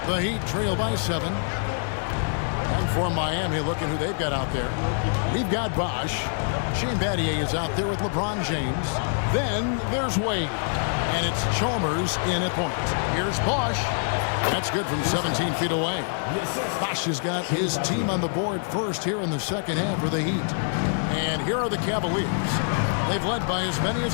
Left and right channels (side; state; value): right; silent; 61 dB below the other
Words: The Heat trail by 7. And for Miami, looking who they've got out there. We've got Bosh. Shane Battier is out there with LeBron James. Then there's Wade. And it's Chalmers in at point. Here's Bosh. That's good from 17 feet away. Bosh has got his team on the board first here in the second half for the Heat. And here are the Cavaliers. They've led by as many